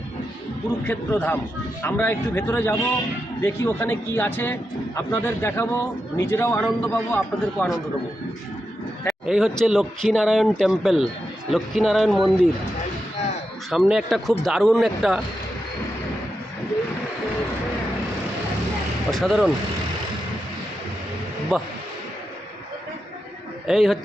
কুরুক্ষেত্র ধাম। আমরা একটু ভেতরে যাব, দেখি ওখানে কি আছে, আপনাদের দেখাবো, নিজেরাও আনন্দ পাবো, আপনাদেরকেও আনন্দ দেবো। এই হচ্ছে লক্ষ্মীনারায়ণ টেম্পল, লক্ষ্মীনারায়ণ মন্দির। সামনে একটা খুব দারুণ একটা অসাধারণ, বাহ, এই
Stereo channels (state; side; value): normal; both; correlation 0.87